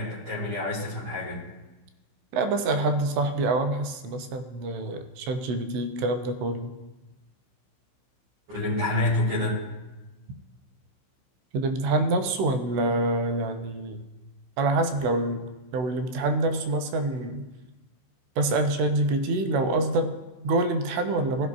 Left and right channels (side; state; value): left; late; 16 ms